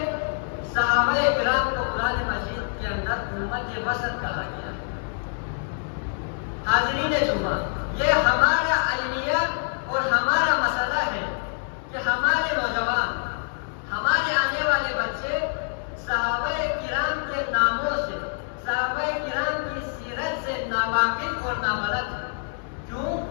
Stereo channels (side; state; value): right; silent; digital silence